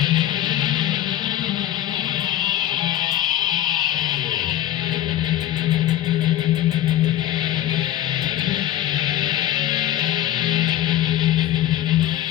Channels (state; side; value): quieter; right; 12.8 dB